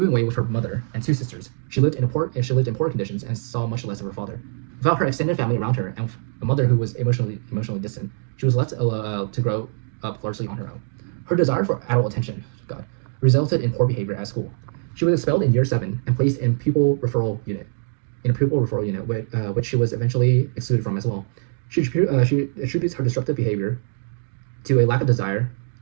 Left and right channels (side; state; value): left; silent; 59 dB below the other